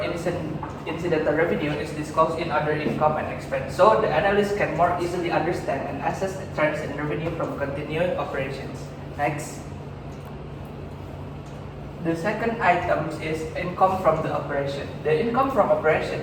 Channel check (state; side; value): identical; both; correlation 1.00